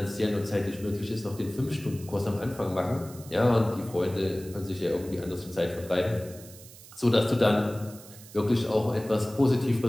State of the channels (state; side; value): noise; right; hiss, 19 dB below the sound